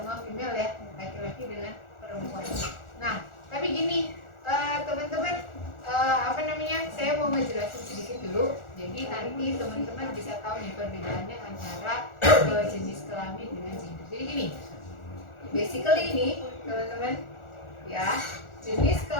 female ya, laki-laki dengan perempuan. Nah tapi gini teman-teman saya mau ngejelasin sedikit dulu. Jadi nanti teman-teman bisa tahu nih perbedaannya antara jenis kelamin dengan gender. Jadi gini, basically ini teman-teman ya, jenis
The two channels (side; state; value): right; late; 1.4 ms